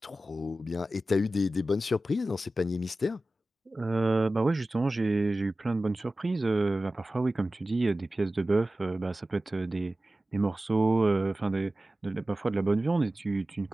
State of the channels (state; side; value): normal; both; correlation 0.95